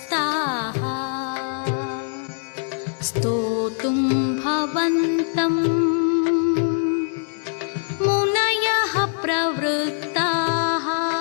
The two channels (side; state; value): right; silent; digital silence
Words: स्तोतुं भवन्तं मुनयः प्रवृत्ताः